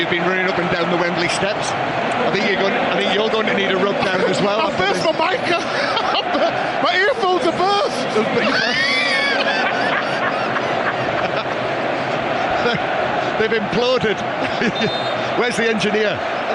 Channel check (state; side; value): identical; both; correlation 1.00